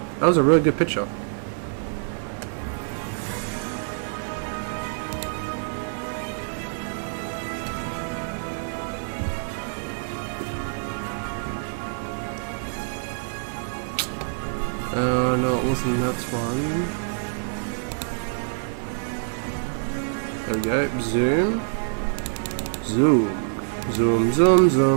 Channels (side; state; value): left; silent; digital silence